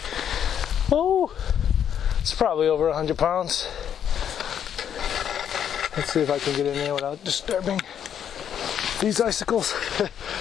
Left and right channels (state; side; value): quieter; right; 9.0 dB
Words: Oh, it's probably over 100 pounds. Let's see if I can get in there without disturbing these icicles.